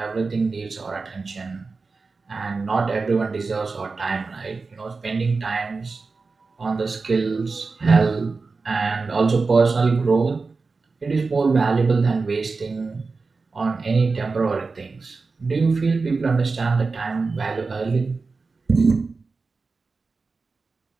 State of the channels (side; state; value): left; quieter; 4.2 dB